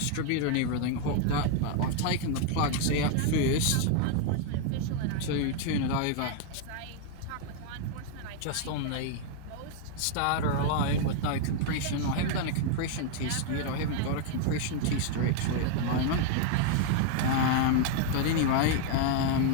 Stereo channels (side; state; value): both; different; correlation 0.00